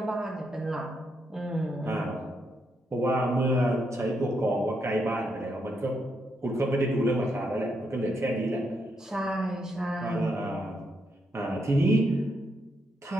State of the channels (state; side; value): normal; both; correlation 0.79